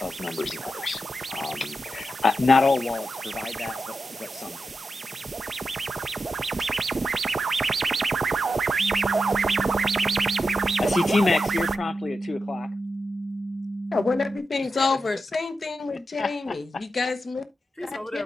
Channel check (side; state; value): both; normal; correlation 0.89